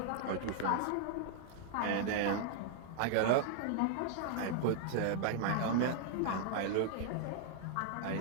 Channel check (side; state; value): both; different; correlation -0.01